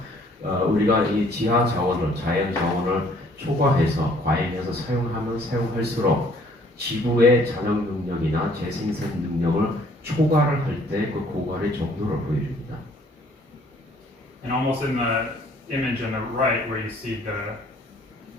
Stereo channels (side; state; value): both; normal; correlation 0.59